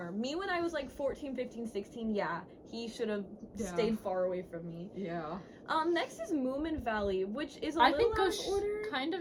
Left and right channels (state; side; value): identical; both; correlation 1.00